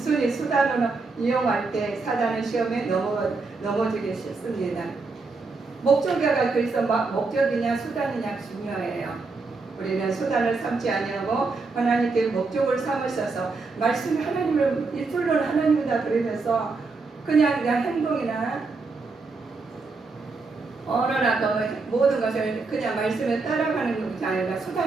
수단으로 이용할 때 사단의 시험에 넘어지게 싶습니다. 목적이가 그래서 목적이냐 수단이냐 중요해요. 우리는 수단을 삼지 아니하고 하나님께 목적을 삼으셔서 말씀 하나님을 이틀로는 하나님이다 그러면서 그냥 행동이나 언어나 그 모든 것을 그냥 말씀에 따라가는 것이 아니라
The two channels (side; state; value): left; quieter; 4.0 dB